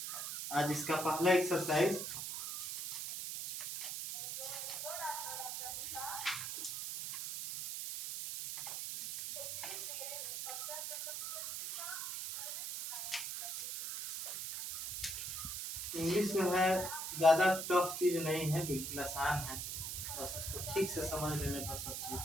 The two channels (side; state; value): right; noise; hiss, 4 dB below the sound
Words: आज इसका पहला एक्सरसाइज। इंग्लिश जो है ज़्यादा टफ चीज़ नहीं है, बिल्कुल आसान है, बस उसको ठीक से समझ लेने पर सब